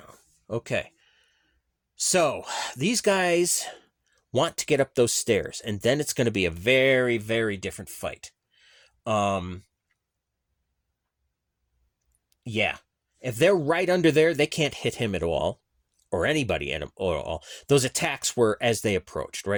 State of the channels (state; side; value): identical; both; correlation 1.00